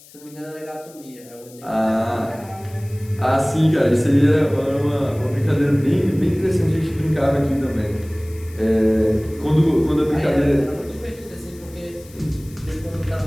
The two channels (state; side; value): noise; left; hiss, 23 dB below the sound